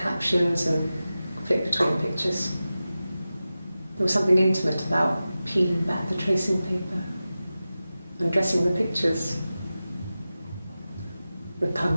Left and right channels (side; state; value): both; inverted; correlation -0.94